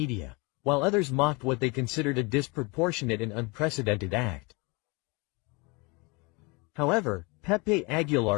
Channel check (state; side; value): quieter; right; 27.9 dB